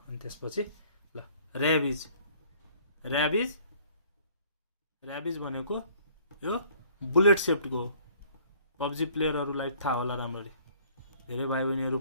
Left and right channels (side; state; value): both; inverted; correlation -0.56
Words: अनि त्यसपछि ल ऱ्याबिज भनेको यो बुलेट सेप्टको हो। पब्जी प्लेयरहरूलाई थाहा होला राम्ररी, धेरै भाइ बहिनीहरू